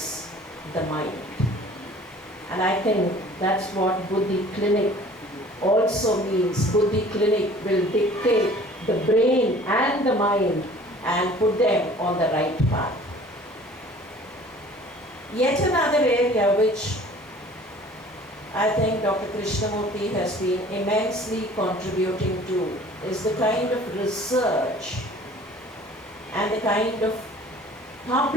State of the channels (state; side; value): normal; both; correlation 0.49